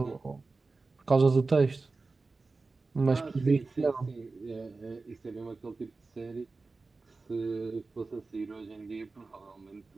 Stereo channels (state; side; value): quieter; left; 3.8 dB